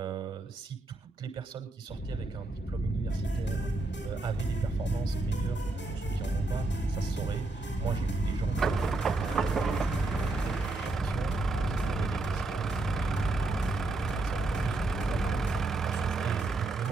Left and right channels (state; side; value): quieter; left; 3.0 dB